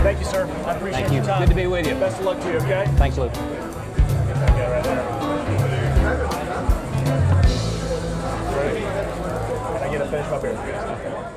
Thank you, sir. I appreciate Thank you. your time. Good to be with you. Best of luck to you, okay? Thanks, Lew. Okay, right there. Can I get a finish my beer?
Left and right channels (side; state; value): both; identical; correlation 1.00